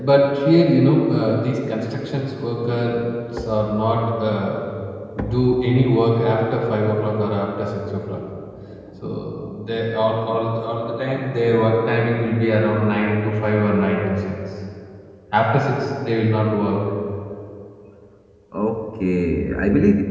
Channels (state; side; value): identical; both; correlation 1.00